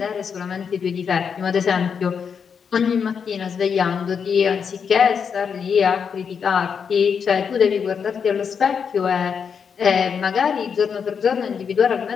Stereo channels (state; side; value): quieter; right; 6.6 dB